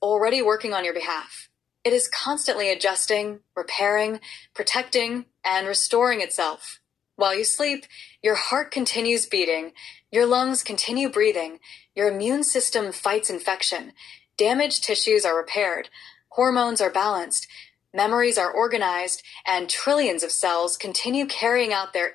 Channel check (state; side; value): quieter; right; 8.4 dB